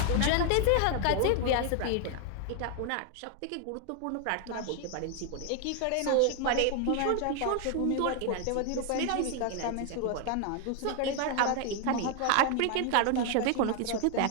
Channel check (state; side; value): different; both; correlation 0.00